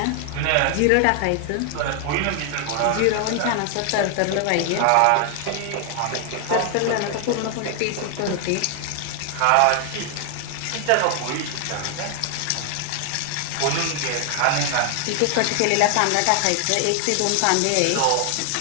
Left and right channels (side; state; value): both; different; correlation 0.00